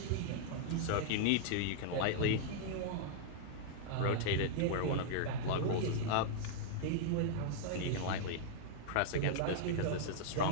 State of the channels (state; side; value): different; both; correlation -0.01